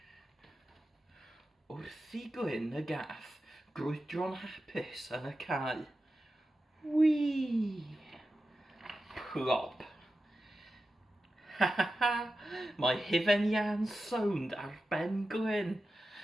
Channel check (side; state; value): both; normal; correlation 0.92